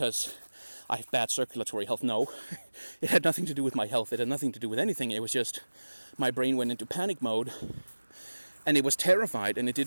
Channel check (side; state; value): both; inverted; correlation -1.00